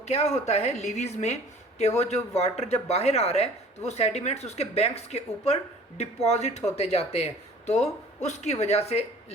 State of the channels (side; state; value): both; normal; correlation 0.48